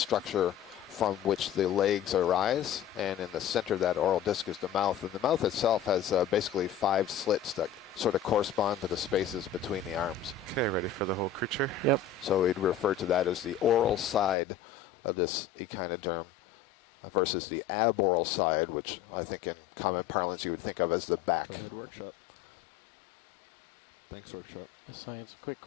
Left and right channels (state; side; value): drops out; right; at 14.4 s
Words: from which the legs arise, and in the center of that oral disc is the mouth. And the mouth itself has basically 5 slits that sort of correspond to the spaces between the arms. Okay, ready for the whole creature? Yep. So we'd refer to that as the oral side of this echinoderm versus the aboral side, which I think in common parlance you would think of as the back. Go ahead, workshop. Thanks, workshop. Science, quick